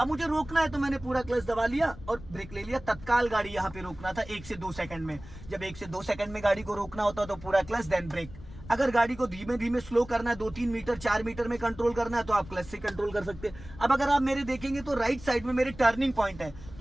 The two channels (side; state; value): left; noise; rumble, 16 dB below the sound